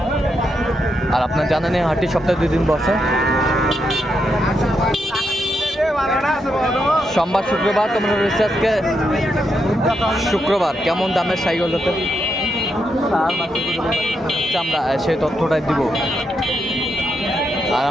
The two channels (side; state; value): both; normal; correlation 0.82